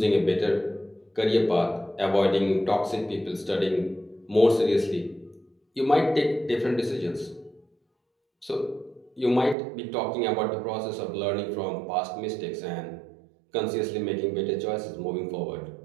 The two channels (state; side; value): drops out; left; at 9.6 s